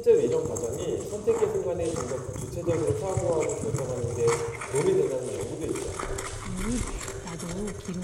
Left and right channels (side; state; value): both; identical; correlation 1.00